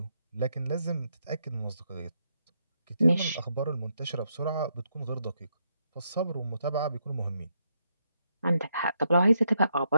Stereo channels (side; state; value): both; inverted; correlation -0.78